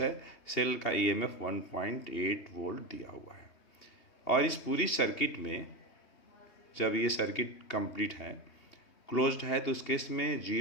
है। सेल का ईएमएफ 1.8 वोल्ट दिया हुआ है। और इस पूरी सर्किट में जब ये सर्किट कंप्लीट है, क्लोज्ड है, तो उस केस में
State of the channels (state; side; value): late; right; 2.8 ms